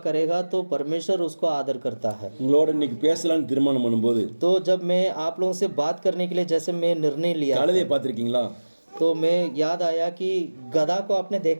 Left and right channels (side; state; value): both; inverted; correlation -1.00